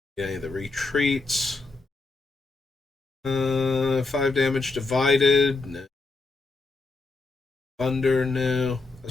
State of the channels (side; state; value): right; quieter; 3.7 dB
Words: Any of the retreats. 5 damage divided. No. Thunder, no. I